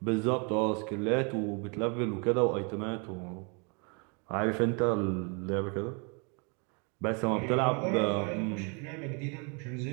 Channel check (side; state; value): left; quieter; 34.2 dB